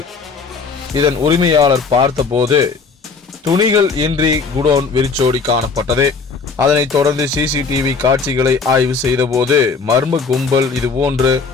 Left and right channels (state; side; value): quieter; right; 4.7 dB